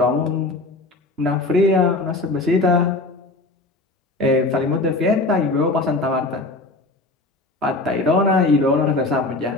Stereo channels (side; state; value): right; quieter; 3.0 dB